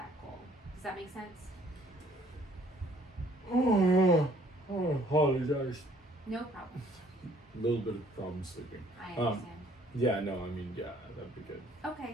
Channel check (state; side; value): normal; both; correlation 0.60